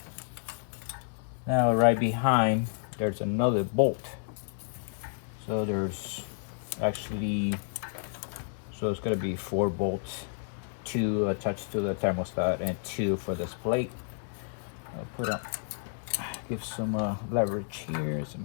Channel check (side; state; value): right; silent; 57 dB below the other